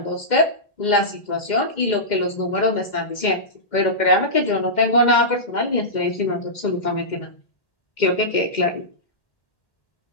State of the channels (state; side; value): late; right; 2.1 ms